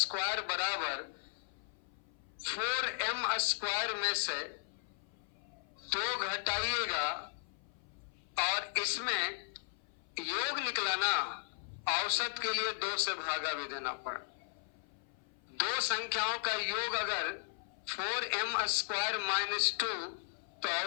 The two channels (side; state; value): right; silent; 53 dB below the other